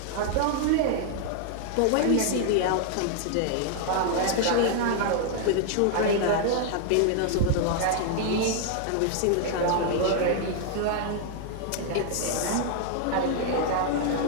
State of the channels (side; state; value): both; different; correlation 0.00